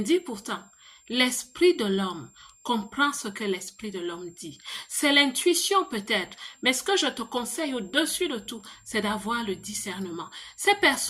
pourtant. L'esprit de l'homme comprend ce que l'esprit de l'homme dit. C'est l'intuition peut-être, mais ce que je te conseille au-dessus de tout, c'est d'avoir le discernement. Ces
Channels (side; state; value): both; identical; correlation 1.00